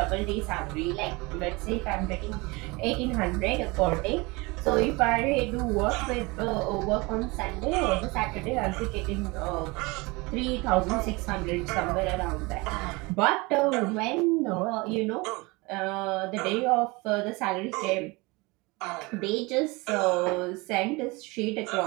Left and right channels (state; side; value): quieter; left; 24.9 dB